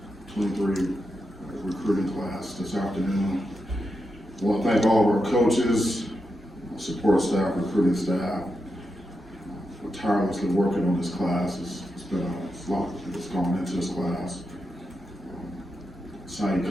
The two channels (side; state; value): both; normal; correlation 0.87